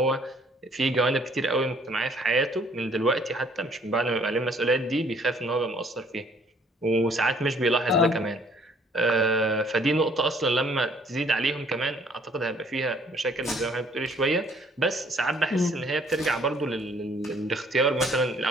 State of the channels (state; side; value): normal; both; correlation 0.60